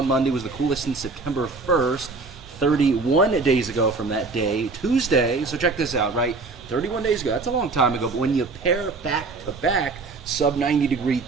Monday was the coolest since September 1st, 31 days ago from that day. Tuesday, so check this out, right? 31 days ago, that's a long time ago, but when you pair back to back sub 90 degree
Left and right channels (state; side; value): quieter; left; 3.9 dB